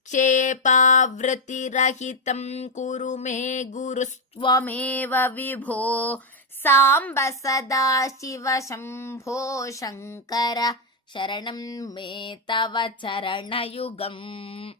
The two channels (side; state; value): both; normal; correlation 0.04